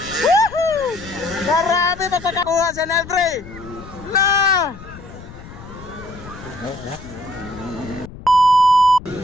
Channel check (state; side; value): noise; left; rumble, 16 dB below the sound